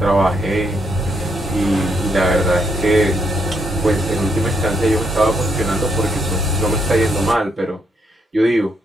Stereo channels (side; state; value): both; normal; correlation 0.75